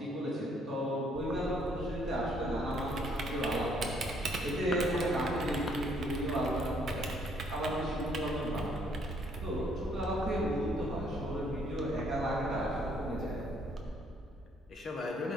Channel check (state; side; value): normal; both; correlation 0.66